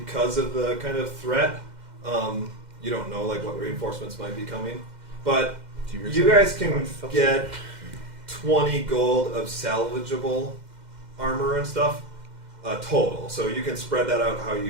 of the kind of threat. You don't know like what reinforcements might be coming, but you guys can get 20 gold of salvageable armor and stuff total. So you can spread that out how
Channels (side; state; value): left; late; 2.1 ms